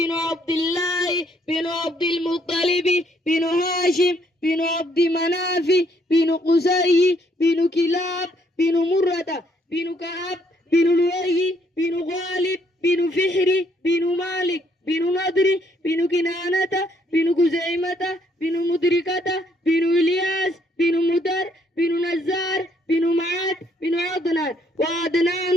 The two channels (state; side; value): normal; both; correlation 0.69